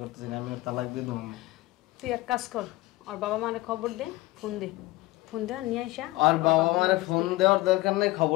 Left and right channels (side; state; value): right; quieter; 18.9 dB